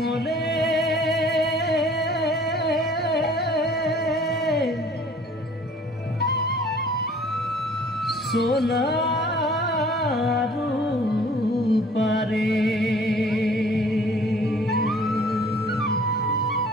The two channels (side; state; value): both; normal; correlation 0.53